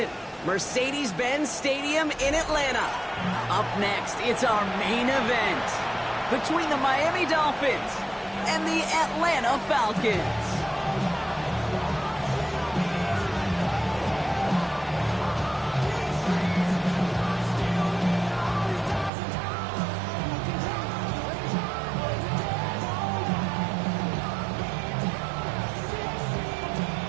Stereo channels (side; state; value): left; drops out; at 19.1 s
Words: Mercedes-Benz Stadium in Atlanta. Up next, it's our main event between the Miami Dolphins and the Atlanta Falcons.